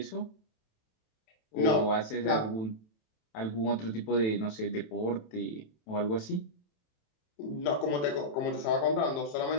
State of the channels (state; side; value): late; right; 27 ms